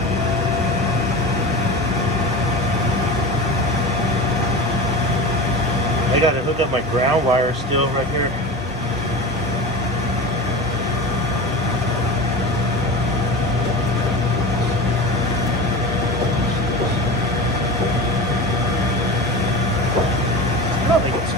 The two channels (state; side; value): normal; both; correlation 0.30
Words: I gotta hook up my ground wire still right here.